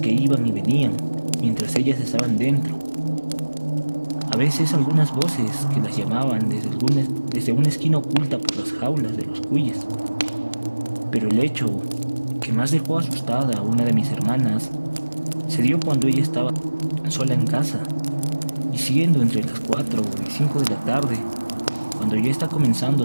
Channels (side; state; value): both; inverted; correlation -1.00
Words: iban y venían mientras ellas estaban dentro. A veces algunas voces que las llamaban desde una esquina oculta por las jaulas de los cuyes. Pero el hecho que más dejó asustada a una de mis hermanas se dio cuando ella estaba sola en casa, Y siendo entre las 4 y 5 de la tarde, cuando ya está comenzando